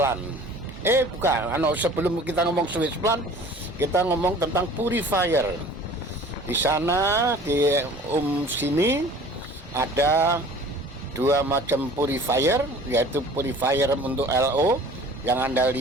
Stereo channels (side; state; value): both; normal; correlation 0.46